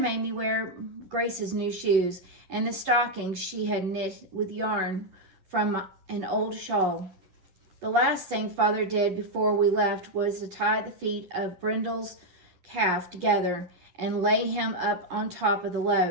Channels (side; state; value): left; late; 11 ms